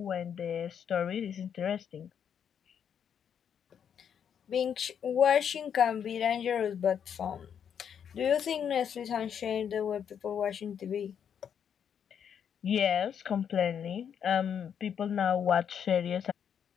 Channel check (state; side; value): quieter; right; 8.1 dB